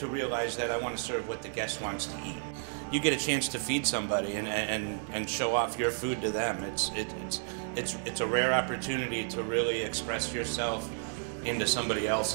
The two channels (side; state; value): left; silent; 57 dB below the other